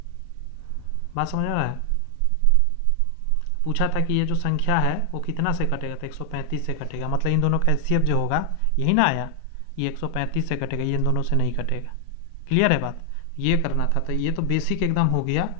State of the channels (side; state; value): both; different; correlation 0.00